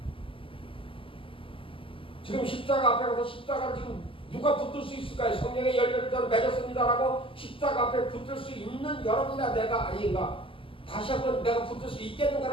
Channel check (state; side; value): late; right; 0.25 ms